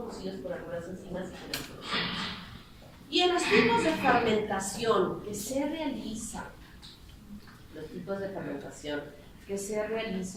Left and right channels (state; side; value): identical; both; correlation 1.00